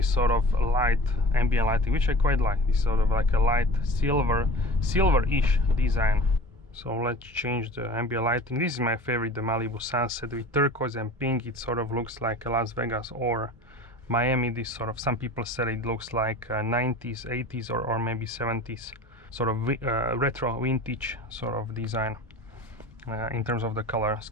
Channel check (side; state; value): both; normal; correlation 0.39